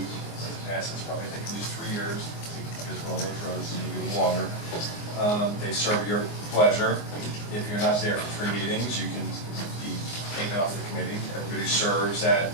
it passes, probably take at least 3 years, because for all those roads, maybe a little longer. They serve your pleasure. If you're not there for 3 meetings, you can be taken off the committee. Everybody serves at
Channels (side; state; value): right; late; 24 ms